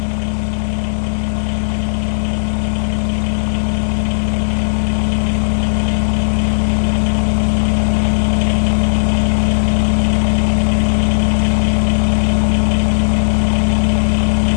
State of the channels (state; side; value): silent; right; digital silence